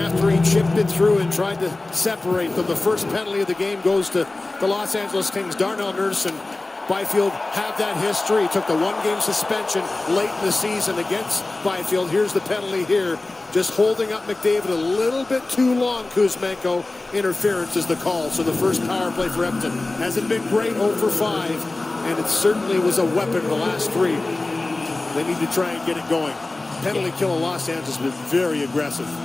he chipped it through and tried to separate them. The first penalty of the game goes to the Los Angeles Kings. Darnell Nurse and Byfield have that history. He took the one-game suspension late in the season against Byfield. Here's the penalty here. Just holding up McDavid a little bit too long, Kuzmenko. Interference is the call. So the first power play for Edmonton hasn't been great, 0 for 5, and it certainly was a weapon the last 3. They need to try and get it going. Penalty kill in Los Angeles has been very aggressive.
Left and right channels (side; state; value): right; quieter; 3.1 dB